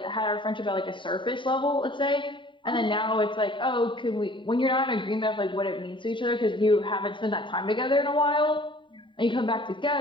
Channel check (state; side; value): late; right; 0.23 ms